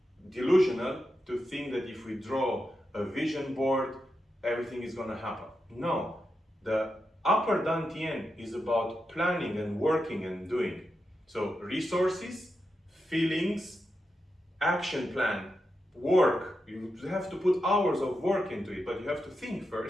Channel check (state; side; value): normal; both; correlation 0.87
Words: delusional to think that if we draw a vision board, everything is going to happen. No, the upper Dantian is about planning and working and doing. So resources, feelings, action plan, work. You have to put hours of work into it, but you have to think